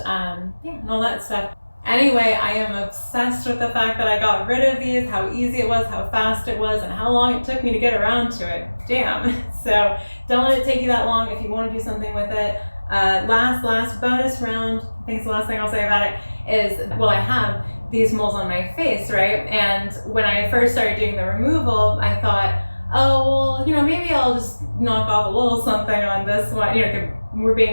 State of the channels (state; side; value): inverted; both; correlation -1.00